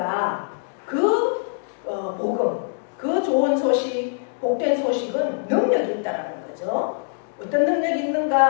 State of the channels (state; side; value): silent; right; digital silence